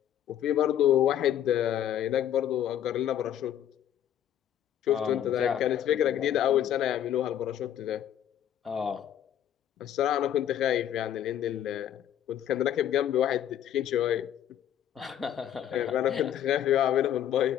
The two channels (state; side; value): quieter; right; 10.7 dB